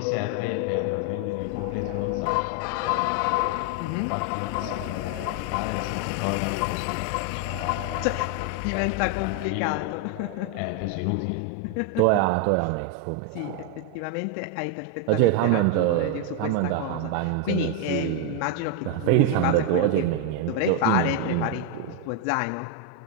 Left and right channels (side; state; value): both; different; correlation 0.01